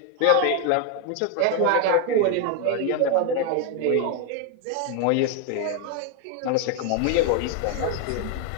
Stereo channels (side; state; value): both; different; correlation 0.01